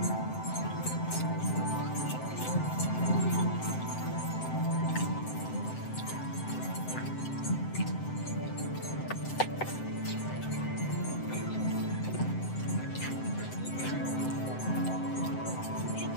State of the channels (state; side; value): late; right; 7.8 ms